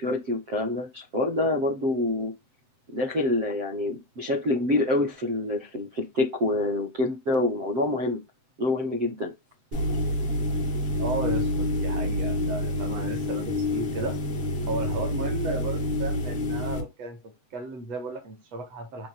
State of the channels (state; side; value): late; left; 7.8 ms